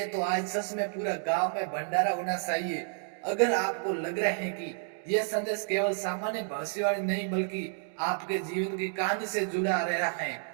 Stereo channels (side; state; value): left; silent; digital silence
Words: तो आज सच में पूरा गांव में भंडारा होना चाहिए। अगर आपको लग रहा है कि यह संदेश केवल सामान्य भविष्यवाणी नहीं बल्कि आपके जीवन की कहानी से जुड़ा रहा है,